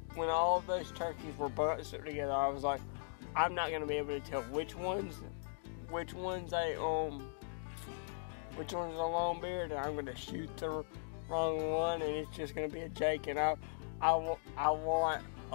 turkeys were bunched together. I was like, I'm not gonna be able to tell which one's a long beard, and I'm gonna shoot the wrong one, and it's just gonna be a Jake. And I want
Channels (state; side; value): silent; right; digital silence